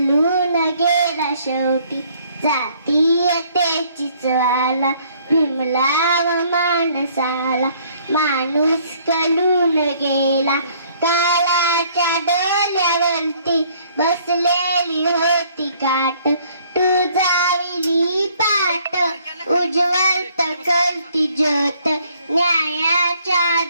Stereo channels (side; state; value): both; inverted; correlation -0.62